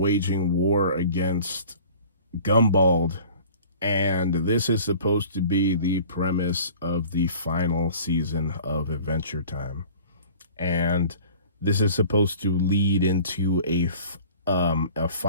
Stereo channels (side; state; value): both; inverted; correlation -0.45